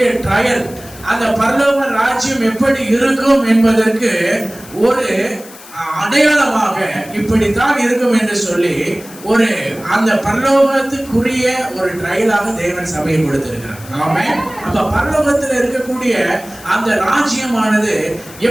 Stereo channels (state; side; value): noise; left; hiss, 19 dB below the sound